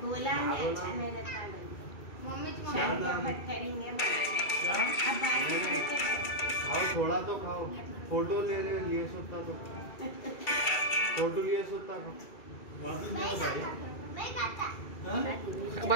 बोला नहीं अच्छा नहीं रहता करेंगे खाओ थोड़ा तो खाओ। फोटो लिए सोता तो फोटो लिए सोता को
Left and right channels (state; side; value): late; right; 2.3 ms